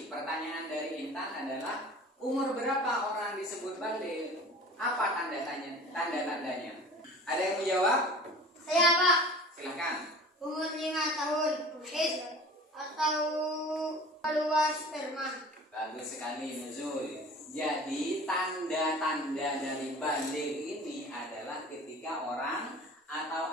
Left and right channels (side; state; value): both; normal; correlation 0.42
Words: Pertanyaan dari Intan adalah umur berapa orang disebut baligh? Apa tanda-tandanya? Ada yang menjawab? Saya Pak, Silakan. umur 5 tahun. Atau keluar sperma. Bagus sekali Nuzul. Jadi tanda-tanda dari baligh ini adalah ketika orang